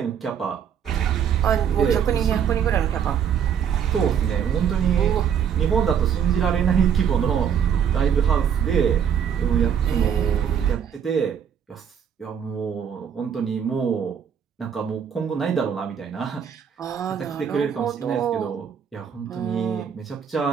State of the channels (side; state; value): left; quieter; 8.1 dB